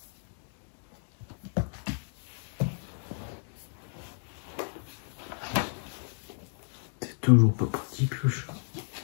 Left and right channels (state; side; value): silent; right; digital silence